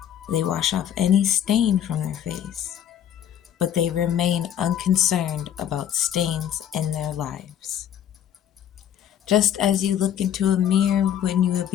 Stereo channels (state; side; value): quieter; right; 10.1 dB